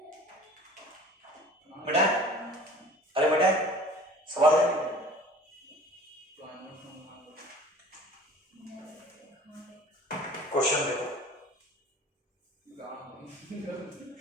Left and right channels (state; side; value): normal; both; correlation 0.45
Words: बेटा, अरे बेटा सवाल दे, तो आनो मांगो। क्वेश्चन देखो, गाँव